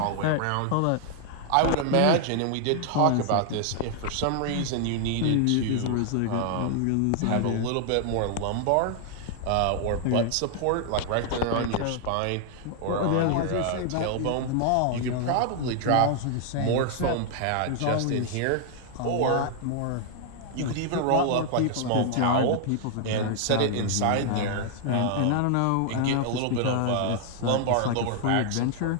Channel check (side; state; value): both; different; correlation 0.00